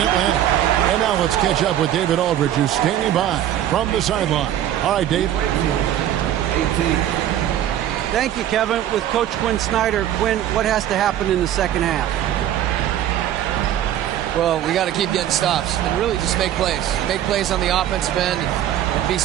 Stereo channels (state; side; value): quieter; left; 11.6 dB